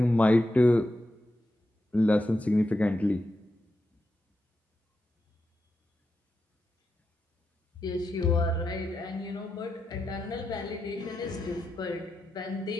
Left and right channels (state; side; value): normal; both; correlation 0.87